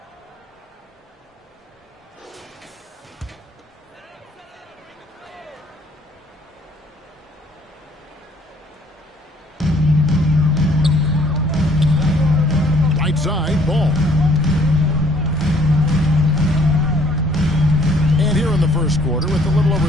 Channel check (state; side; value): normal; both; correlation 0.61